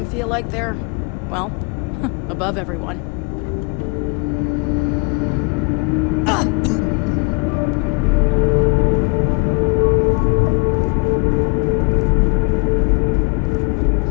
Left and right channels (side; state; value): right; quieter; 31.5 dB